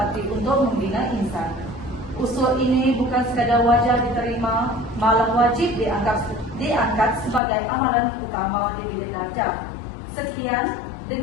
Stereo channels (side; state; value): right; drops out; at 7.4 s